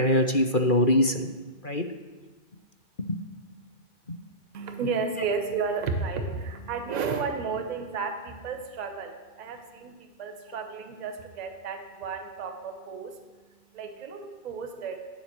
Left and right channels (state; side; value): late; right; 2.4 ms